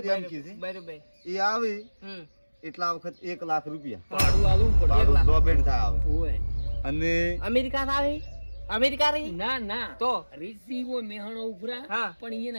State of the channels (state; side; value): inverted; both; correlation -1.00